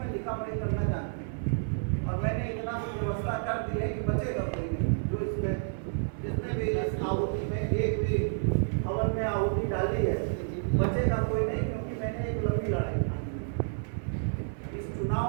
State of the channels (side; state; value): left; silent; 57 dB below the other